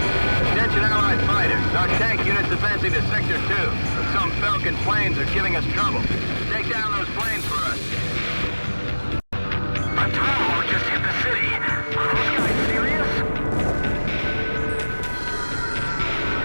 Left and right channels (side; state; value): both; inverted; correlation -1.00